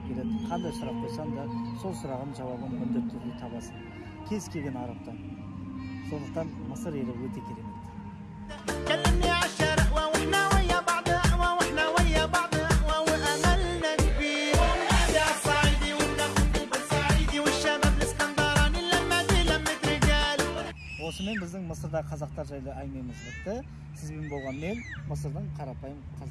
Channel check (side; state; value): both; identical; correlation 1.00